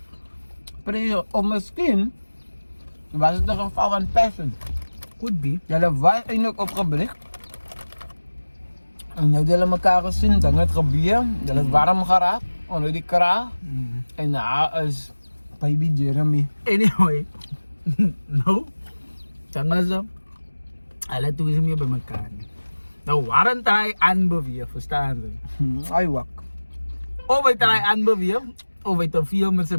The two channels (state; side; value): inverted; both; correlation -1.00